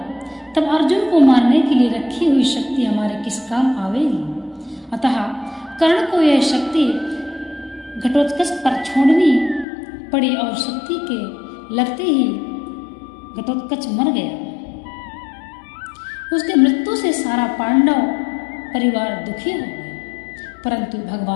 तब अर्जुन को मारने के लिए रखी हुई शक्ति हमारे किस काम आवेगी। अतः कर्ण को यह शक्ति घटोत्कच पर छोड़नी पड़ी और शक्ति के लगते ही घटोत्कच मर गया। उसके मृत्यु से सारा पांडव परिवार दुखी हो गए, परंतु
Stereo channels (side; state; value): right; drops out; at 9.7 s